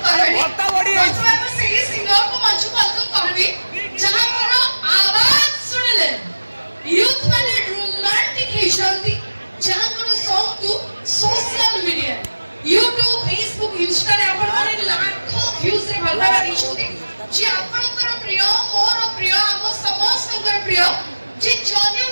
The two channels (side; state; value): both; inverted; correlation -1.00